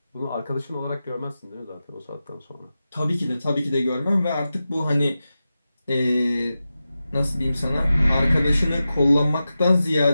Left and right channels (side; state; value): both; inverted; correlation -0.93